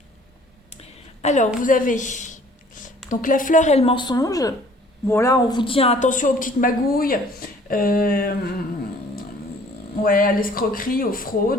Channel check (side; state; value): both; normal; correlation 0.55